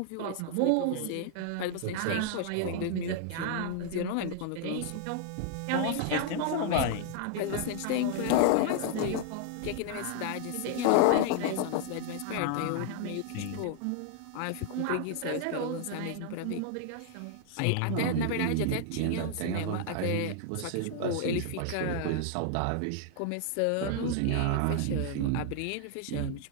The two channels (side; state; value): both; different; correlation 0.00